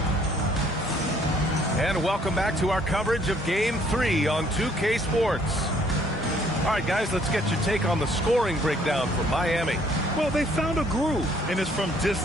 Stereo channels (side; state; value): both; normal; correlation 0.62